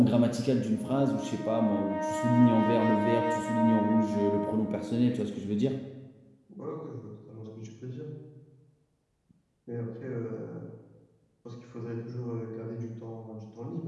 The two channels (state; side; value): identical; both; correlation 1.00